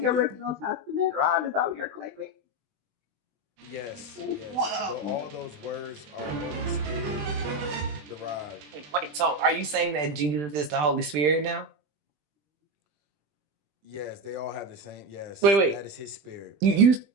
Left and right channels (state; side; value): late; left; 20 ms